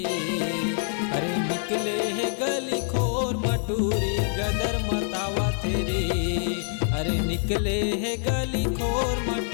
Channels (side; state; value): right; silent; digital silence